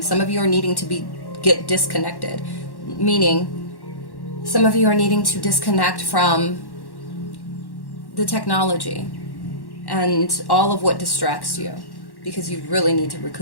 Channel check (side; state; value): right; late; 1.1 ms